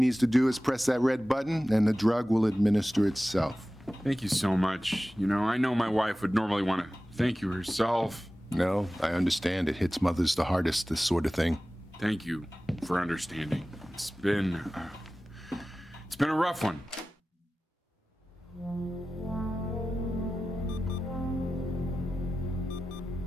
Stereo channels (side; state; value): both; normal; correlation 0.96